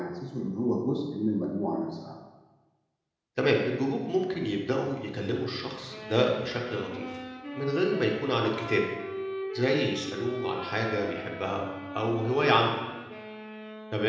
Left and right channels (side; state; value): both; identical; correlation 1.00